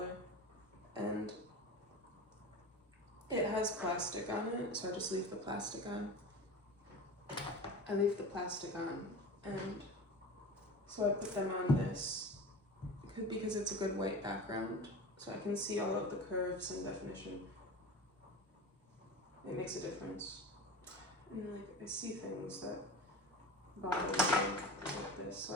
and it has plastic on it, so I just leave the plastic on. I leave the plastic on, and so I put them on this because it's a good white background, so I can see all of the curves and definition. It makes a difference. And like I see things that bother me like this, so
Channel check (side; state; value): both; normal; correlation 0.32